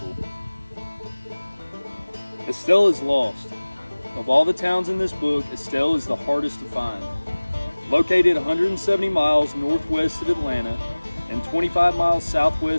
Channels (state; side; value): inverted; both; correlation -1.00